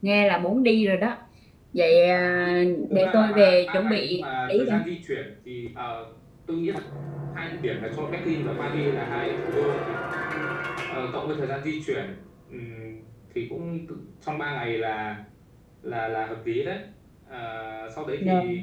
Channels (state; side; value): identical; both; correlation 1.00